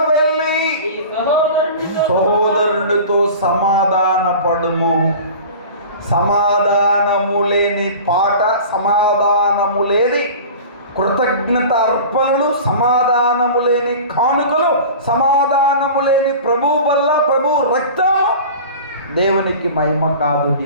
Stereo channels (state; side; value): inverted; both; correlation -0.37